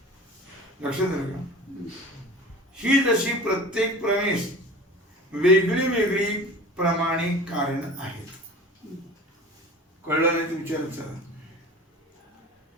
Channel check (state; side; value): normal; both; correlation 0.38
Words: लक्षात आलं का? ही जशी प्रत्येक प्रमेश वेगळी वेगळी प्रमाणिक कारण आहेत. कळलं नाही तुमच्या?